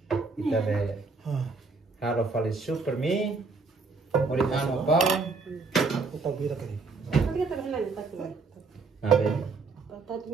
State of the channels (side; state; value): left; quieter; 4.1 dB